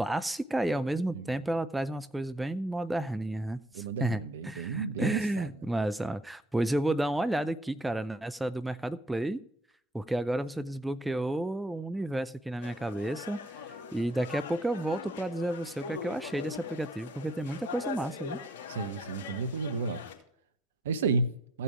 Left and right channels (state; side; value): normal; both; correlation 0.64